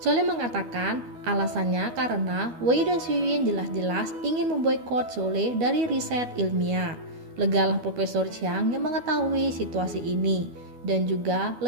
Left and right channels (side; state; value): left; late; 12 ms